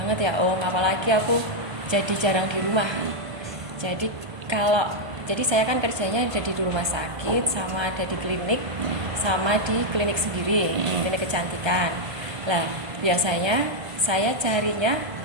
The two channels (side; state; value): left; late; 1.3 ms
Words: ya Om, apalagi aku jadi jarang di rumah. Jadi saya kan kerjanya ada di rumah sakit, sama ada di klinik, sama di klinik sendiri, klinik kecantikan. Lah, biasanya saya carinya